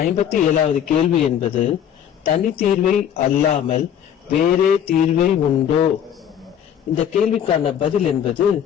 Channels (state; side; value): quieter; right; 9.3 dB